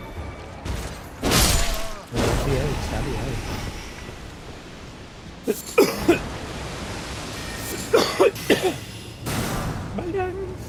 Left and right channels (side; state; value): both; identical; correlation 1.00